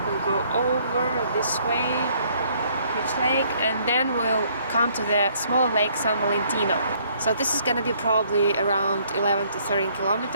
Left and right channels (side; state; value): both; inverted; correlation -0.64